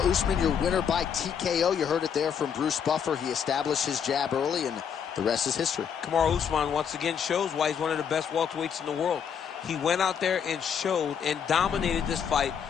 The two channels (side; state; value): right; quieter; 7.6 dB